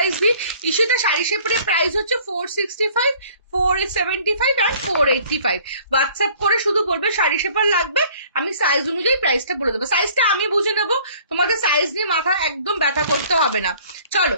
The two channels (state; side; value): inverted; both; correlation -0.54